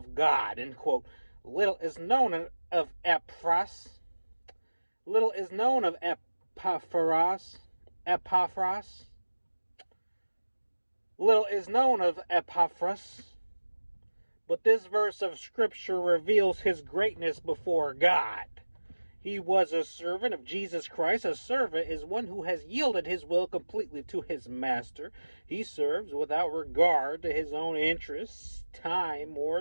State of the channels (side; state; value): both; inverted; correlation -1.00